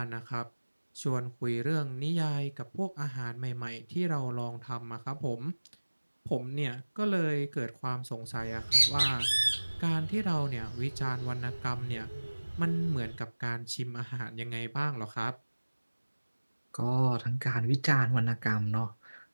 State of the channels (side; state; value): both; inverted; correlation -1.00